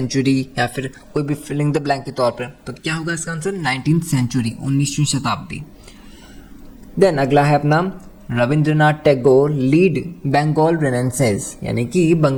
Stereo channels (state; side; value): identical; both; correlation 1.00